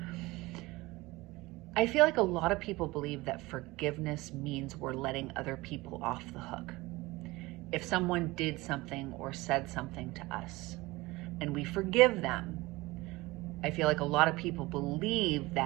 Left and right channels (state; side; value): quieter; left; 21.0 dB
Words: I feel like a lot of people believe that forgiveness means we're letting other people off the hook. If someone did something or said something to us and we forgive them, I feel like a lot of people believe